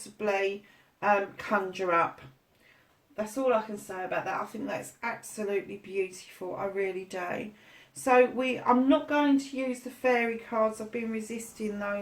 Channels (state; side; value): identical; both; correlation 1.00